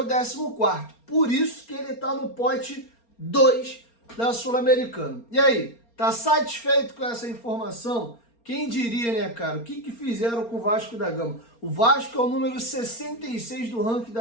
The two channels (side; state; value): right; late; 4.3 ms